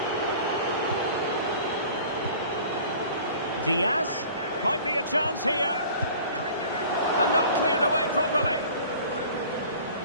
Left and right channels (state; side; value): inverted; both; correlation -0.46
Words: Diaz. Might be a chance here. And not cleared away properly.